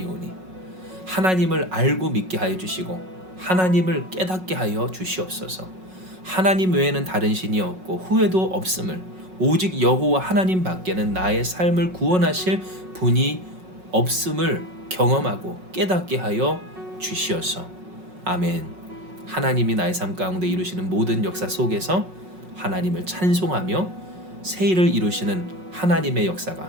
하나님을 알고 믿게 하여 주시고 하나님을 깨닫게 하여 주시옵소서. 하나님 외에는 다른 신이 없고 후회도 없음을 오직 여호와 하나님 밖에는 나의 삶을 구원하실 분이 없음을 경험하고 깨닫게 하여 주시옵소서. 아멘. 하나님이 나의 삶 가운데 이루시는 모든 역사 속에서 하나님을 찬송하며 새 일을 이루시는 하나님의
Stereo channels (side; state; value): left; late; 5.4 ms